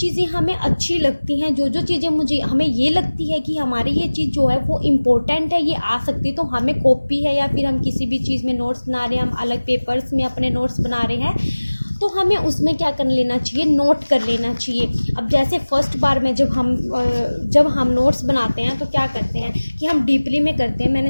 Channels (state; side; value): inverted; both; correlation -1.00